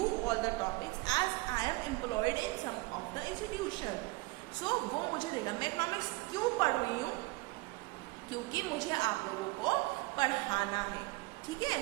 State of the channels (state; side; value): quieter; left; 23.2 dB